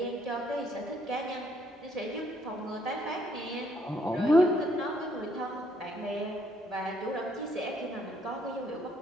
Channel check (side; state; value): both; normal; correlation 0.69